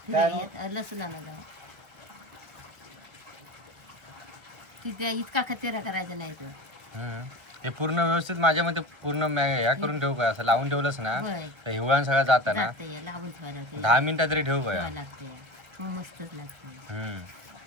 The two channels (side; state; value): left; late; 1.5 ms